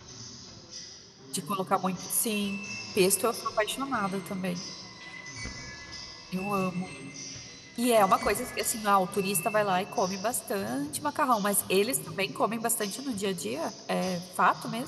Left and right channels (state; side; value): identical; both; correlation 1.00